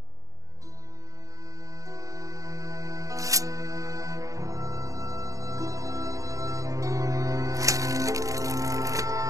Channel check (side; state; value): left; late; 0.16 ms